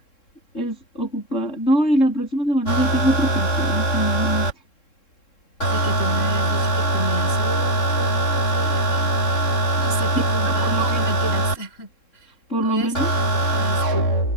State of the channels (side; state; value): right; late; 3.7 ms